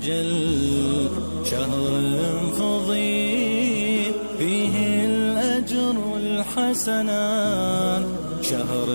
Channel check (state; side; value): inverted; both; correlation -1.00